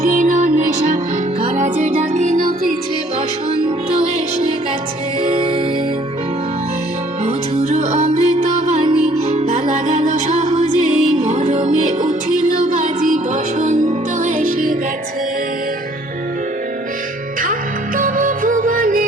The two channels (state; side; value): normal; both; correlation 0.59